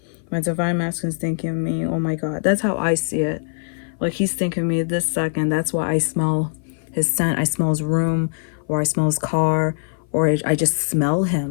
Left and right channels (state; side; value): silent; right; 59 dB below the other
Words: My divine masculine is thinking of me. Oh my god. That's how I see it. Like, he's thinking of me this second. That's why I smell his scent. I smell his room, or I smell his car, or I just smell